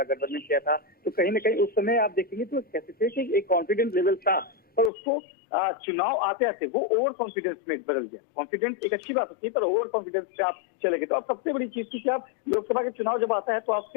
किया था, तो कहीं ना कहीं उस समय आप देखेंगे तो कह सकते हैं कि एक कॉन्फिडेंस लेवल था, पर उसको चुनाव आते आते वो ओवर कॉन्फिडेंस में बदल गया। कॉन्फिडेंस एक अच्छी बात होती है, पर ओवर कॉन्फिडेंस से आप चले गए। तो अब सबसे बड़ी चीज थी कि आप लोकसभा के चुनाव जब आता है तो आप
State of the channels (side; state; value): right; drops out; at 4.9 s